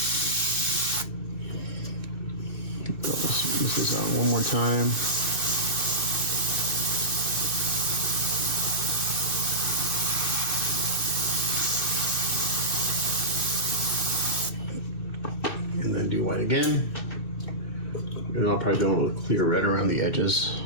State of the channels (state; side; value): late; right; 2.6 ms